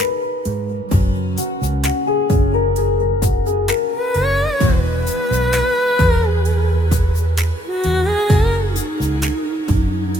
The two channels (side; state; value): both; normal; correlation 0.70